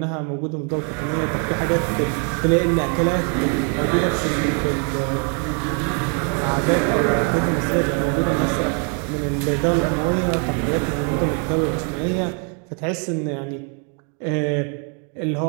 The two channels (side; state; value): left; quieter; 39.7 dB